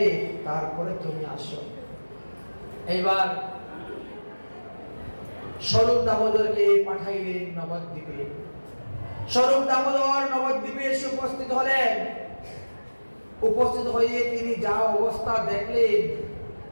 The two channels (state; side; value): inverted; both; correlation -1.00